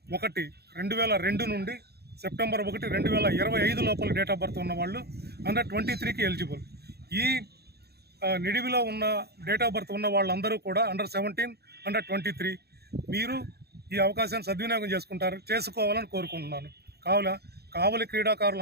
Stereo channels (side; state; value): left; late; 0.47 ms